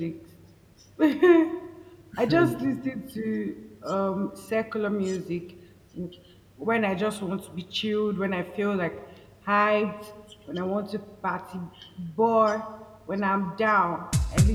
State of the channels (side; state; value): both; identical; correlation 1.00